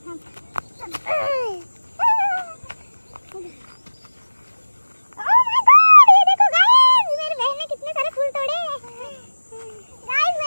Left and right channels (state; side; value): inverted; both; correlation -1.00